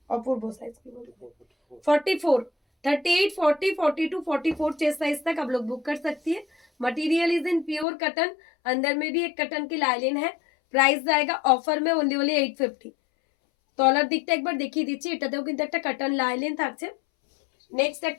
অপূর্ব সাইজ, কি বলবো, 44, 38, 40, 42, 44 चेस्ट साइज तक आप लोग बुक कर सकती है। Material is in pure cotton, अंदर में भी एक कटन की लाइलिन है। প্রাইস জায়গা অফার মে ওনলি 850। তলার দিকটা একবার দেখিয়ে দিচ্ছি, এটাতেও কিন্তু একটা কাটন লাইলিন থাকছে। নেক্সট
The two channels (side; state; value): right; drops out; at 7.9 s